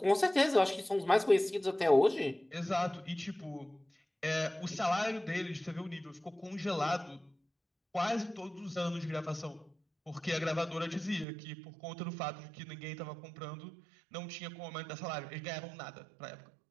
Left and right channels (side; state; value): left; drops out; at 11.2 s